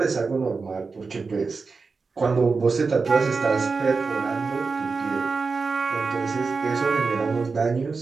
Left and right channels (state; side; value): quieter; left; 4.5 dB